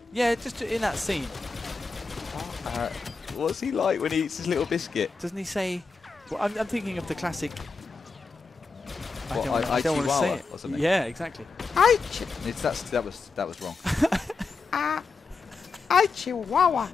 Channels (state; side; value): quieter; right; 4.3 dB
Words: Yeah, just in that scene. What's he like when he eats his little biscuit? Doesn't he say... Well, I'm thinking of the classic... I don't want to say it. Or something. Yeah, exactly. That was wrong. I chihuahua.